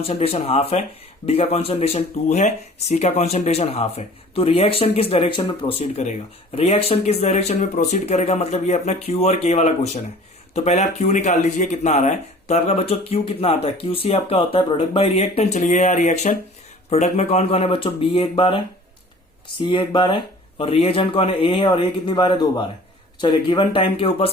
हाफ है, बी का कॉन्सेंट्रेशन 2 है, सी का कॉन्सेंट्रेशन हाफ है, तो रिएक्शन किस डायरेक्शन में प्रोसीड करेगा, रिएक्शन किस डायरेक्शन में प्रोसीड करेगा, मतलब ये अपना Q और K वाला क्वेश्चन है। तो पहले आप Q निकाल लीजिए कितना आ रहा है, तो आपका बच्चों Q कितना आता है, QC आपका होता है प्रोडक्ट बाय रिएक्टेंट। चलिए यार रिएक्शन प्रोडक्ट में कौन कौन है बच्चों, B 1 बार है, C 1 बार है, और रिएजेंट कौन है A है, और A कितनी बार है 2 बार है। चलिए गिवन टाइम के ऊपर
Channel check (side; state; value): both; normal; correlation 0.47